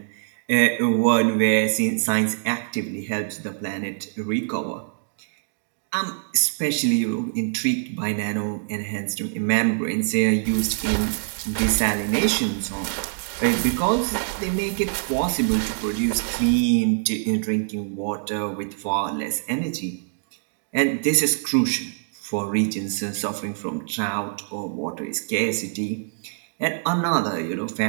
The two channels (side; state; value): left; silent; digital silence